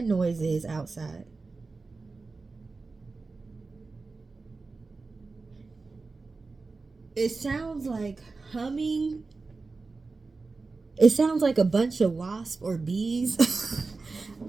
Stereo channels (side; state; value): left; quieter; 3.9 dB